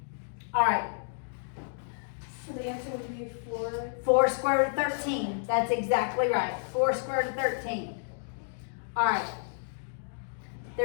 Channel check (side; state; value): right; silent; digital silence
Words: All right. So the answer would be 4. 4 square root of 13. That's exactly right. 4 square root of 13. All right.